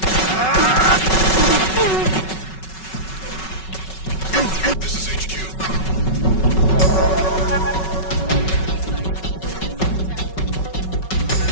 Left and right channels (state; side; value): late; right; 5.3 ms